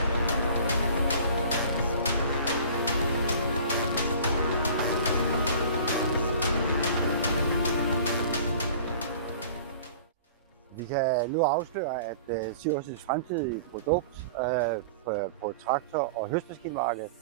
kan nu afsløre, at Siversens fremtidige produkt på traktor- og høstmaskinmarkedet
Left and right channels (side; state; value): both; inverted; correlation -0.44